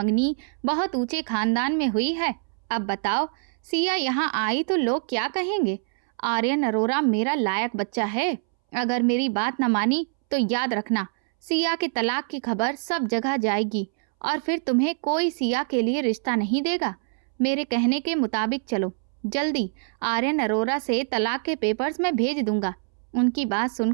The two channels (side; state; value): left; silent; 62 dB below the other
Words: बहुत ऊंचे खानदान में हुई है। अब बताओ, सिया यहाँ आई तो लोग क्या कहेंगे? आर्यन अरोरा मेरा लायक बच्चा है। अगर मेरी बात न मानी तो याद रखना, सिया के तलाक की खबर सब जगह जाएगी और फिर तुम्हें कोई सिया के लिए रिश्ता नहीं देगा। मेरे कहने के मुताबिक चलो। जल्दी आर्यन अरोरा से तलाक के पेपर्स मैं भेज दूंगा। उनकी बात